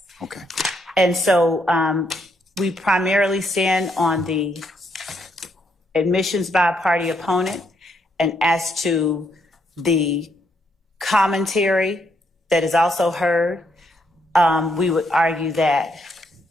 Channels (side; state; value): both; normal; correlation 0.75